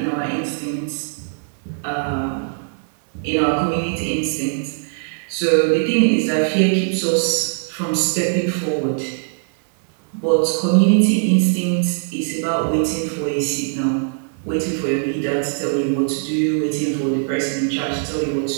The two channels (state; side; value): silent; left; 61 dB below the other